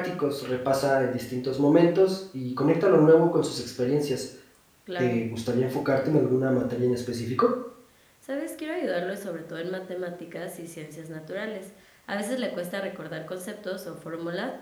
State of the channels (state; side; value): identical; both; correlation 1.00